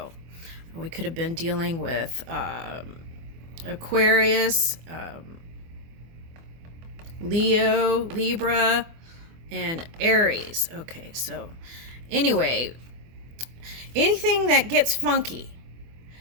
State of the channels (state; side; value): late; left; 24 ms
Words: we could have been dealing with Aquarius, Leo, Libra, and Aries. Okay, so anyway, anything that gets funky,